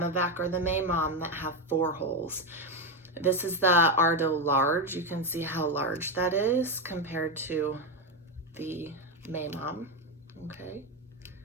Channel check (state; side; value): normal; both; correlation 0.10